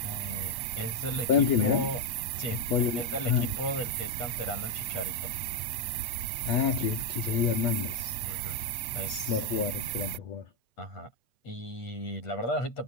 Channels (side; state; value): right; late; 8.4 ms